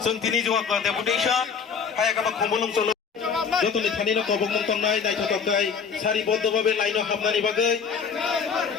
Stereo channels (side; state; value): right; quieter; 6.2 dB